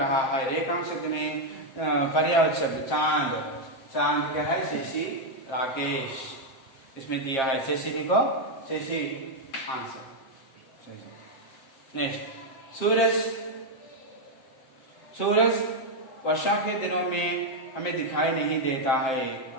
है। रेखांश शब्द में पर्यायवाची शब्द चांद, चांद क्या है शशि राकेश, इसमें दिया है शशि लिखो, शशि आंसर। नेक्स्ट सूरज वर्षा के दिनों में हमें दिखाई नहीं देता है।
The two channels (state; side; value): late; right; 7.6 ms